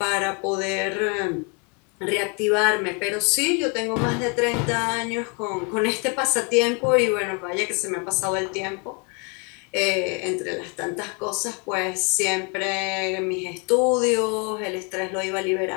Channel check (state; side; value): quieter; right; 34.4 dB